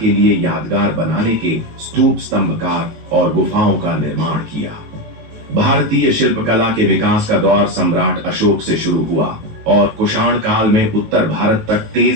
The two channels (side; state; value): left; late; 19 ms